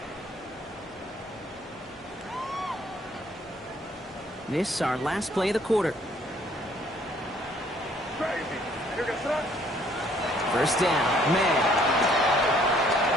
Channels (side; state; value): both; normal; correlation 0.62